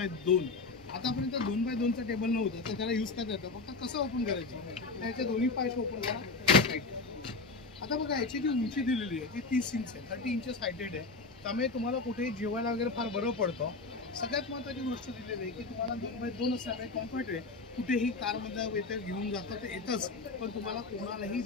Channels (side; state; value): right; quieter; 3.9 dB